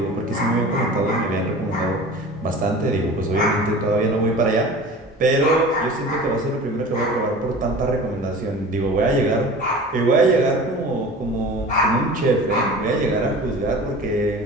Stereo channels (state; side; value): normal; both; correlation 0.39